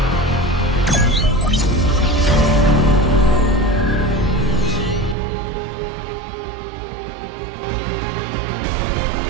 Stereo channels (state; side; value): drops out; left; at 5.2 s